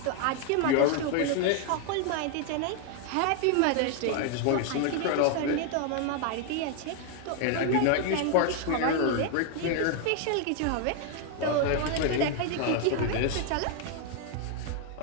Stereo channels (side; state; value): both; different; correlation 0.00